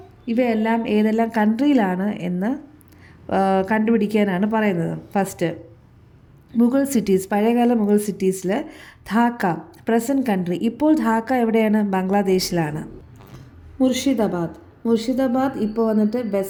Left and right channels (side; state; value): both; identical; correlation 1.00